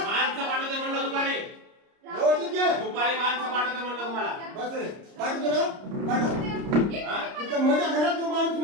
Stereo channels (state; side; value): late; left; 30 ms